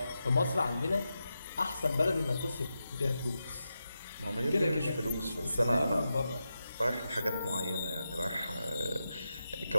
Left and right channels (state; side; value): inverted; both; correlation -0.89